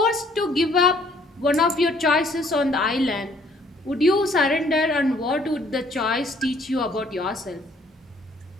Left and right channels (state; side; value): normal; both; correlation 0.62